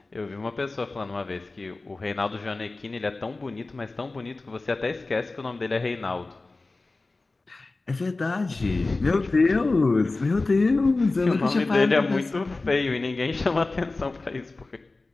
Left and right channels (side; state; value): right; quieter; 3.4 dB